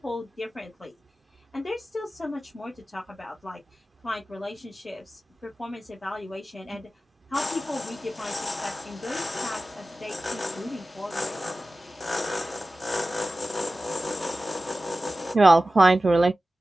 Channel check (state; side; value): normal; both; correlation 0.96